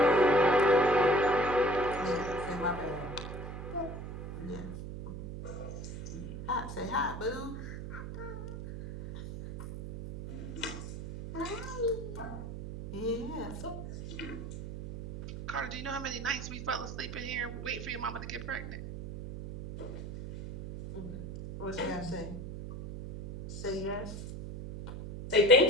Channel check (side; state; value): right; noise; hum, 8 dB below the sound